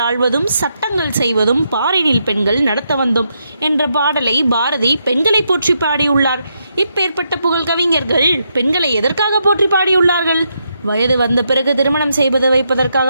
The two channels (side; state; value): both; inverted; correlation -0.80